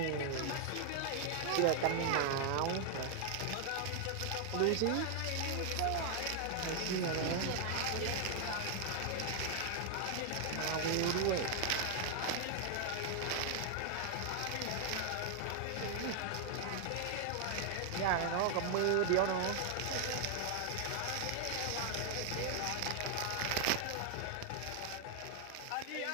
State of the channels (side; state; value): both; different; correlation 0.00